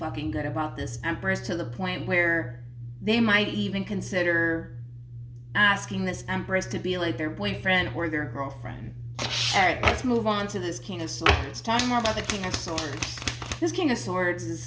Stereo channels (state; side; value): identical; both; correlation 1.00